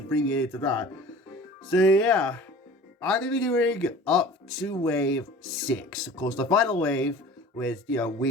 to that. So yeah, I'm gonna be doing up to wave 6. Of course, the final wave with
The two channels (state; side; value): normal; both; correlation 0.42